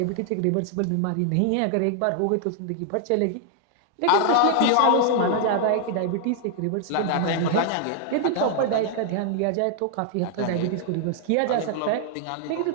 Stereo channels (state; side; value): different; both; correlation 0.00